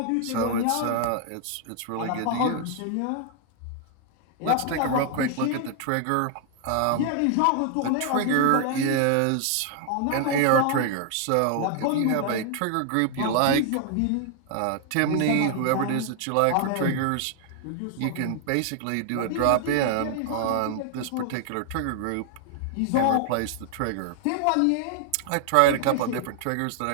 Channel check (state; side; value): different; both; correlation 0.00